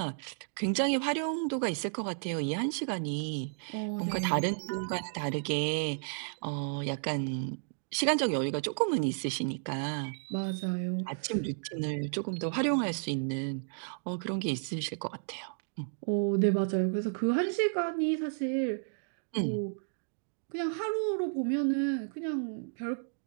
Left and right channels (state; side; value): silent; left; digital silence